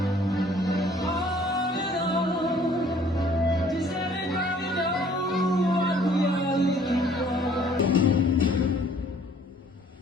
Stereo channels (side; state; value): both; normal; correlation 0.57